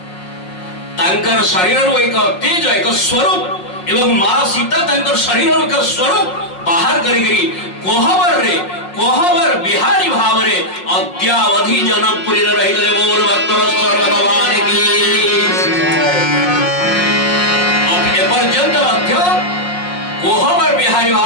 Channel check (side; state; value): right; late; 5.5 ms